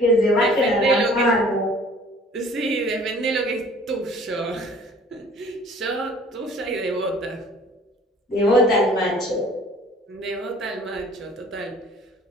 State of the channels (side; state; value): both; normal; correlation 0.51